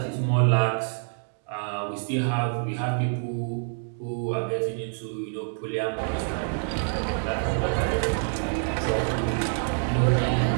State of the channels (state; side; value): silent; left; digital silence